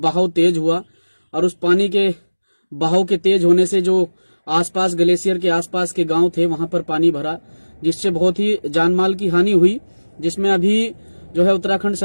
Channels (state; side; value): inverted; both; correlation -1.00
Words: तेज हुआ और उस पानी के बहाव के तेज होने से जो आसपास ग्लेशियर के आसपास के गांव थे वहां पर पानी भरा, जिससे बहुत ही जानमाल की हानि हुई, जिसमें अभी जो है उत्तराखंड